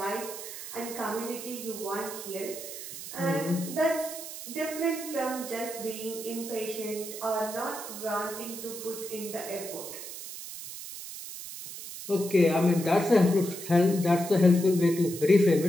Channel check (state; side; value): noise; right; hiss, 10 dB below the sound